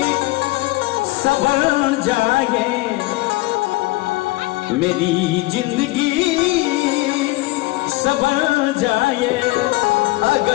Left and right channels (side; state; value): right; quieter; 20.4 dB